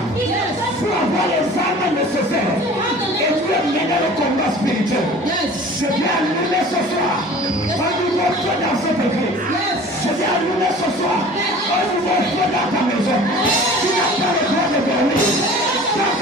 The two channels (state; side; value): normal; both; correlation 0.44